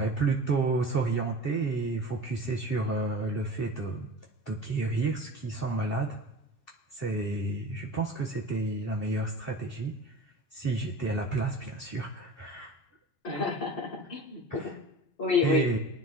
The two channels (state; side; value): late; right; 7.4 ms